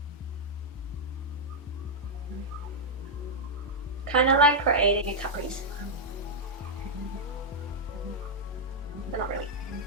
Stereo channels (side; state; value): both; normal; correlation -0.05